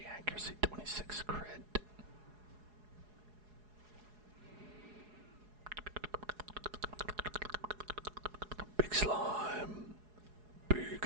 accuracy, 26 crit. Big slime. Big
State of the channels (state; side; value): late; left; 4.8 ms